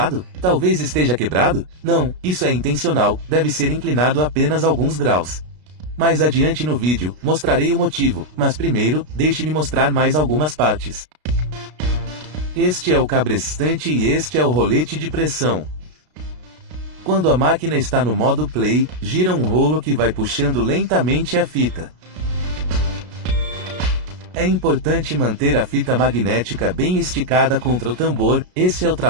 Talvez esteja quebrado? Não, isso é intencional, deve ser inclinado apenas alguns graus. Mais adiante no vídeo, mostrarei o motivo, mas primeiro, deixe-me mostrar mais algumas partes. Este é o cabrestante e este é o rolete de pressão. Quando a máquina está no modo play, gira um rolo que vai puxando lentamente a fita. É importante manter a fita magnética bem esticada contra o tambor, esse é o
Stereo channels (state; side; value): late; left; 33 ms